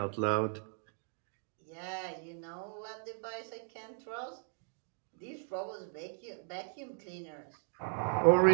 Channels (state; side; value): silent; left; 53 dB below the other